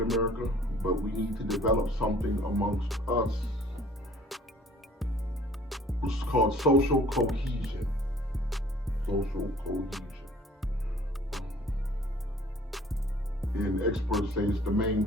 America, but we need to develop something amongst us which is called social cohesion. Social cohesion. And experts say it's the main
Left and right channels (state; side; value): normal; both; correlation 0.53